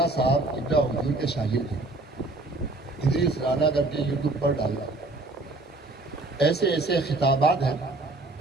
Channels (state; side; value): quieter; left; 3.0 dB